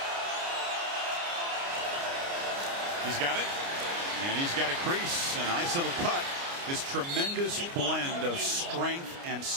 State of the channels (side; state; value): left; late; 29 ms